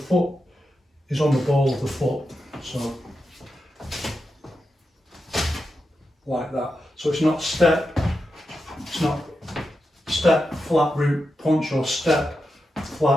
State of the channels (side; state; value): both; normal; correlation 0.88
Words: is on the ball of the foot. So like that. So it's not step, flat root, punch, or step,